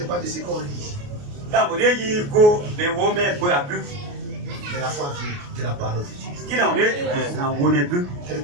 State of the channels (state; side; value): late; left; 28 ms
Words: pas de ce qu'on lit. Mais la foi vient de la parole de Dieu.